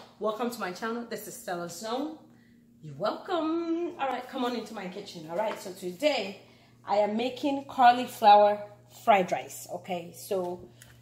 welcome to my channel. This is StellaZone. You're welcome. All right, come on into my kitchen. All right, so today I am making cauliflower fried rice. Okay, so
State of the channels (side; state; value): both; identical; correlation 1.00